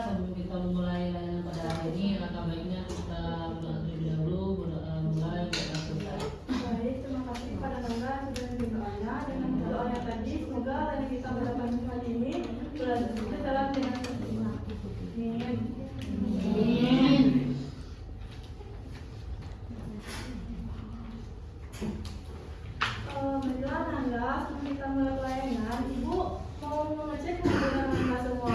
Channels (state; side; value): identical; both; correlation 1.00